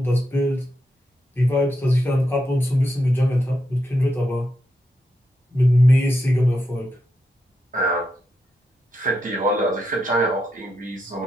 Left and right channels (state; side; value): normal; both; correlation 0.84